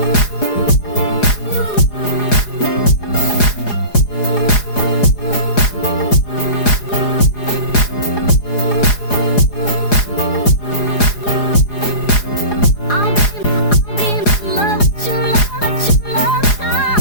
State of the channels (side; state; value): right; late; 4.8 ms